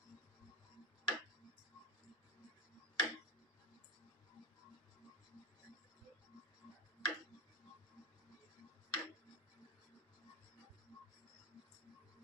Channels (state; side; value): normal; both; correlation 0.21